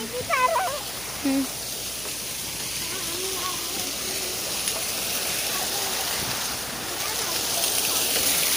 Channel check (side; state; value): left; noise; hum, 17 dB below the sound